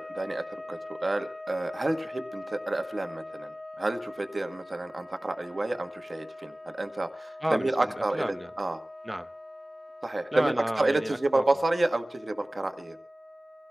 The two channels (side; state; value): both; normal; correlation 0.98